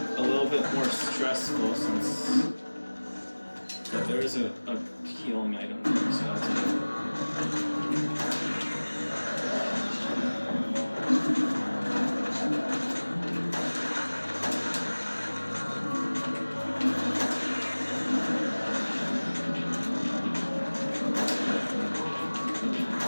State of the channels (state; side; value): inverted; both; correlation -1.00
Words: little bit more stressful since but there is a healing item there, so that's good.